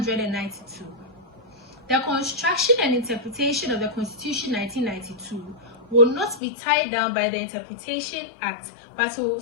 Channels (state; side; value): drops out; right; at 6.4 s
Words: The construction and interpretation of the Constitution 1992 will not be tied down by the Interpretation Act, but will